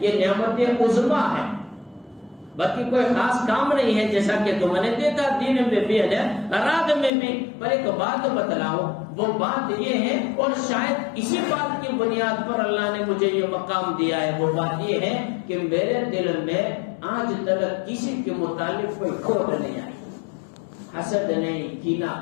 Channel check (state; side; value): drops out; right; at 7.1 s